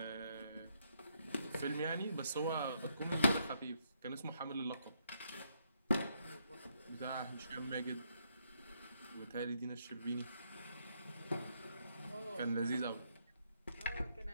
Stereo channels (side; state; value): both; inverted; correlation -0.75